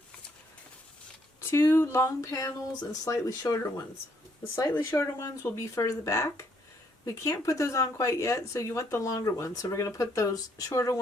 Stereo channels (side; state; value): both; normal; correlation 0.70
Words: 2 long panels and slightly shorter ones. The slightly shorter ones will be further back. We can't put those on quite yet, so you want the longer ones. So we're going to put those shorter